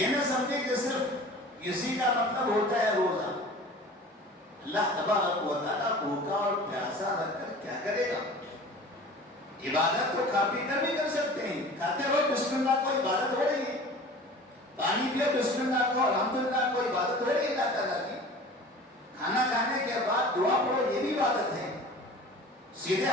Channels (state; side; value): normal; both; correlation 0.41